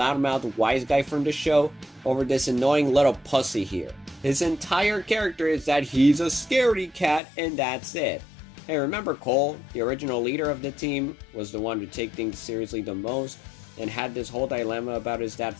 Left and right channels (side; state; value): right; drops out; at 7.2 s